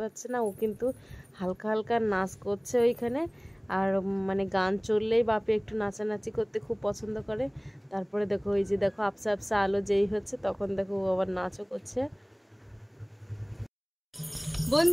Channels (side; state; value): both; identical; correlation 1.00